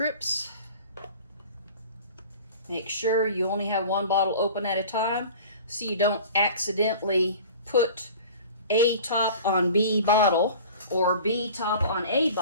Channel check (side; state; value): both; inverted; correlation -0.42